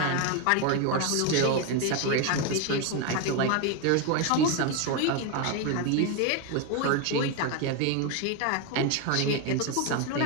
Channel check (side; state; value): both; different; correlation 0.02